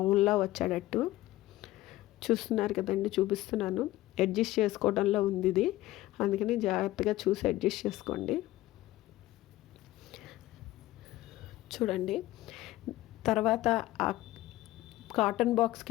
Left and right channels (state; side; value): quieter; right; 16.5 dB